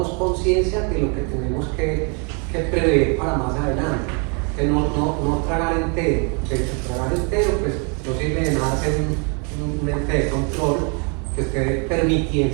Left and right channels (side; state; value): left; quieter; 36.0 dB